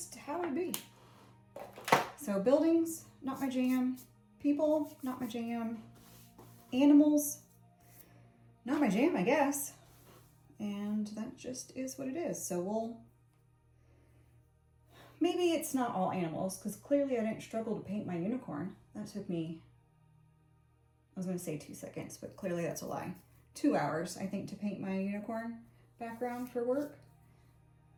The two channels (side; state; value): both; identical; correlation 1.00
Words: how it be. So buildings, not my jam. People, not my jam. Animals, not my jam, I guess. And that just is what it is. So maybe it's not all animals, because clearly I didn't struggle to paint my unicorn. That took me, I was going to say 2 seconds, but clearly that's a lie. 2 hours, I think, to paint my unicorn background for work.